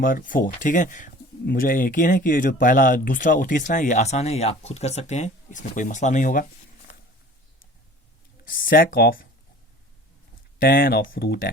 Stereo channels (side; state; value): both; normal; correlation 0.45